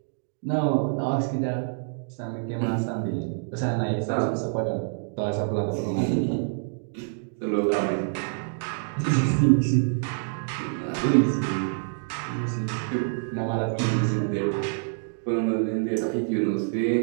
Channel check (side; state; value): left; silent; digital silence